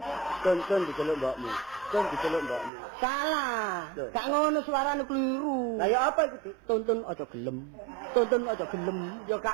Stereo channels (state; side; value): drops out; left; at 2.7 s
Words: Tun diceluk mbokmu. Salah. Gak ngono suarane keliru. Lah ya apa iku Dik? Tuntun aja gelem. Ya